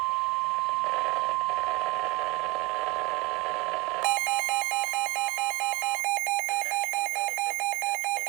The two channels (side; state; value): left; quieter; 23.7 dB